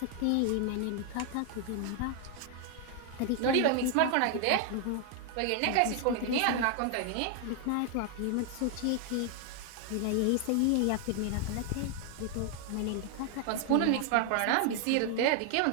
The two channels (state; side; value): different; both; correlation 0.00